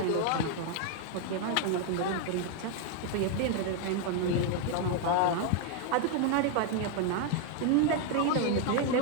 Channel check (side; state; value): both; different; correlation 0.00